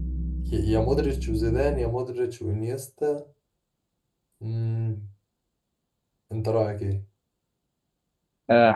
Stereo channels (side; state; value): both; identical; correlation 1.00